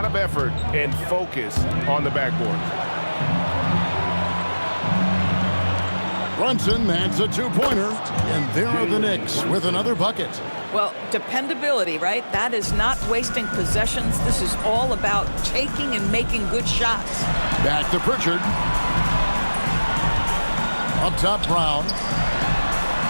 of effort and focus on the backboard. Brunson, that's a two-pointer. And there are the Knicks with another bucket. Well, dependability, right? That is not wasting possessions. This is all about taking and making good shots. Back to Pritchard. Up top, Brown.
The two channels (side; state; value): both; inverted; correlation -1.00